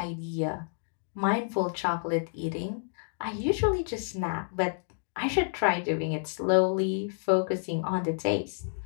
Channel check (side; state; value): right; silent; digital silence